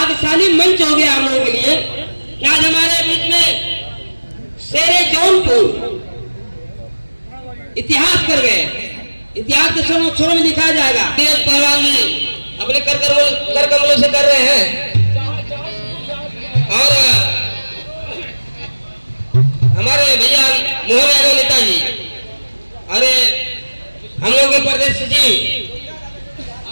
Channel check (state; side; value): inverted; both; correlation -1.00